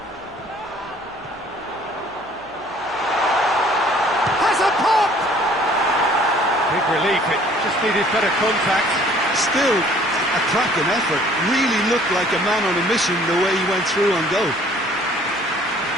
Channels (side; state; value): right; noise; hum, 29 dB below the sound